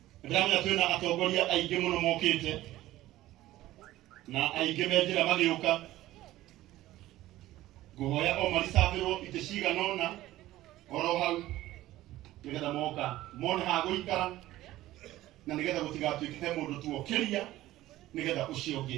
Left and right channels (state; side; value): quieter; left; 15.6 dB